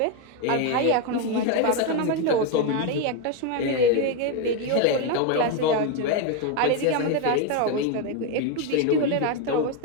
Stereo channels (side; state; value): both; different; correlation 0.02